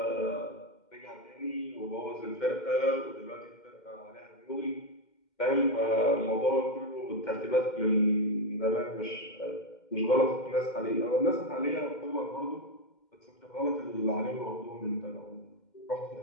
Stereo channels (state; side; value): late; right; 2.1 ms